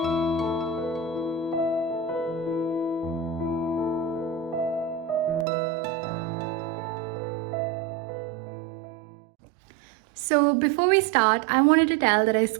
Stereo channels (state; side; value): drops out; left; at 5.5 s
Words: So before we start, I wanted to tell that I